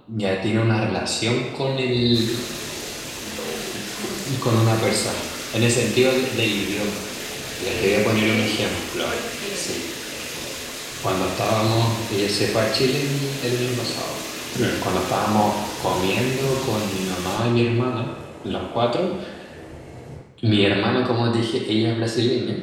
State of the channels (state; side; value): identical; both; correlation 1.00